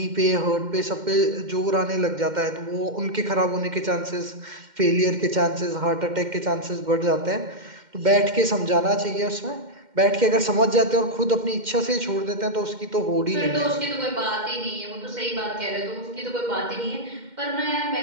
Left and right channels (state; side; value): late; left; 2.1 ms